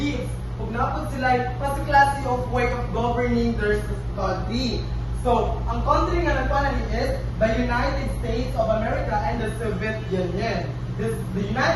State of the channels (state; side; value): identical; both; correlation 1.00